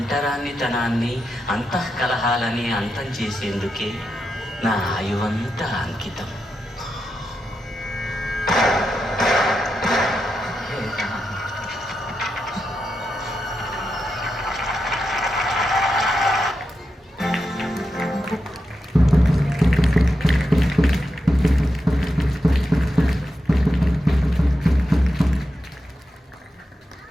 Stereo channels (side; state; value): both; normal; correlation 0.87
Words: అంతఃకలహాలని అంతం చేసేందుకే నా ఆయువంతా అంకితం.